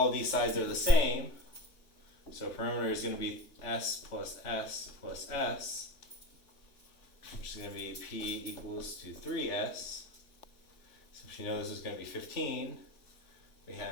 of these sides are the same. So perimeter is going to be S plus S plus S, which is going to be P equals to 3S. So if you know this is going to be 15, we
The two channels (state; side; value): late; right; 3.5 ms